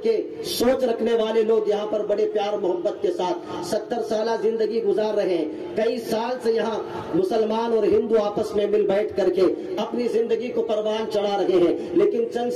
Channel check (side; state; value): both; identical; correlation 1.00